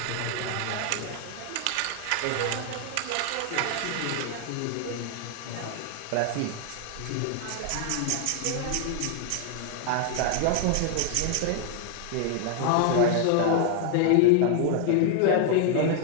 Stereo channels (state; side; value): different; both; correlation 0.00